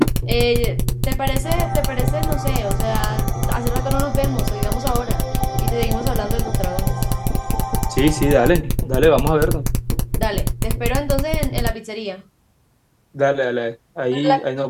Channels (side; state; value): both; identical; correlation 1.00